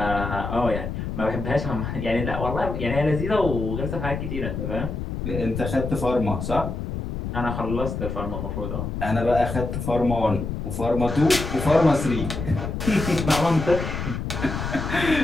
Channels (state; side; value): noise; left; rumble, 4 dB below the sound